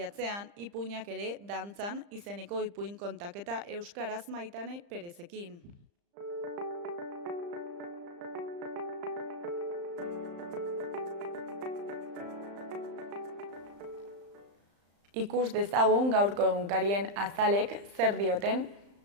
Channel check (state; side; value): late; left; 35 ms